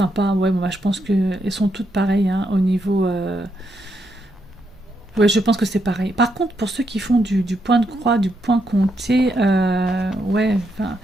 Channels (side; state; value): both; normal; correlation 0.79